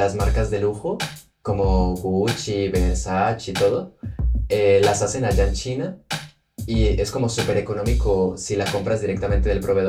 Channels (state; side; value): identical; both; correlation 1.00